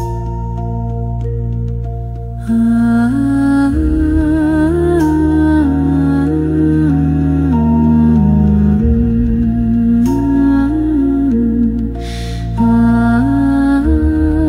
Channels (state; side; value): identical; both; correlation 1.00